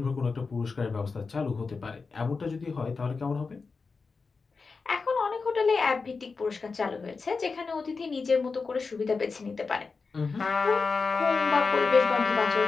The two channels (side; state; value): right; quieter; 4.5 dB